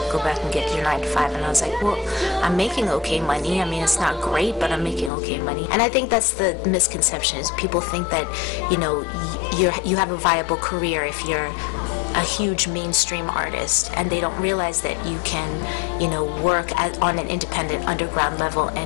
go back and get your 9 to 5? And I was like, well, I'm making okay money. I mean, it's not great, but I'm making okay money. And I think that's the misconception, is people think that, you have a viable career if you're a huge mainstream artist, and they don't realize that you can, work on an independent underground level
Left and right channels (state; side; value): drops out; right; at 5.1 s